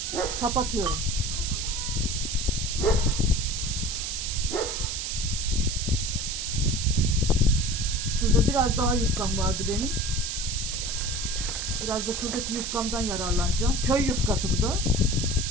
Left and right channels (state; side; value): noise; right; hiss, 3 dB below the sound